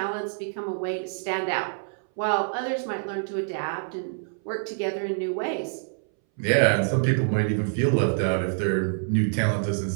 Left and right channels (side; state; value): left; silent; 61 dB below the other